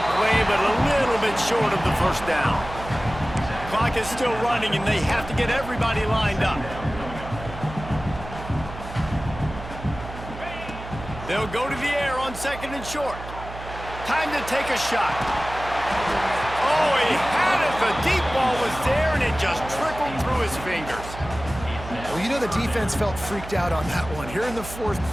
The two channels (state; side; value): noise; right; hum, 12 dB below the sound